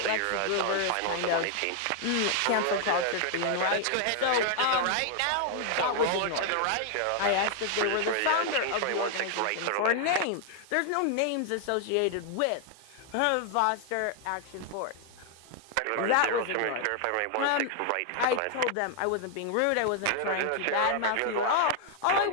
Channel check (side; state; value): both; different; correlation 0.00